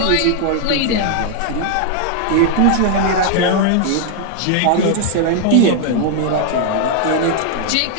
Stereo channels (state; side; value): different; both; correlation 0.00